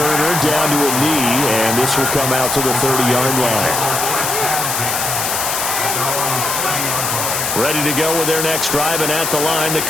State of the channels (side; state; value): left; noise; hiss, 1 dB below the sound